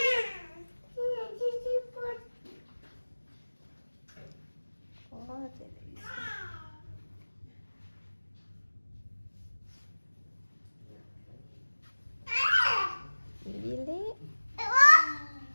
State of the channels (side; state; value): both; inverted; correlation -1.00